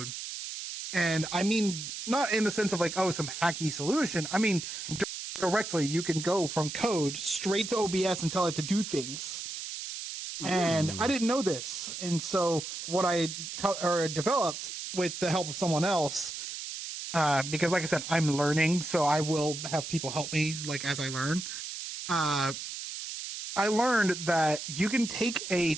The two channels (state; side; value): noise; right; hiss, 7 dB below the sound